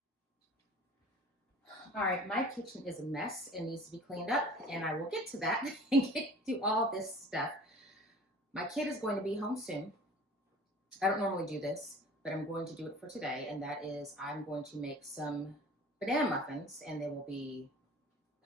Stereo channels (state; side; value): normal; both; correlation 0.45